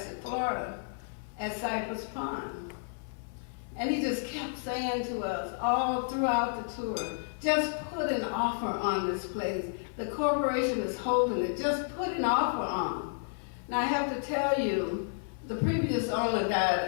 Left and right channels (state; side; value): silent; right; 57 dB below the other